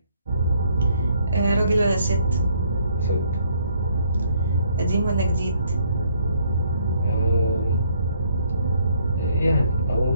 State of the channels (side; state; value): both; inverted; correlation -0.67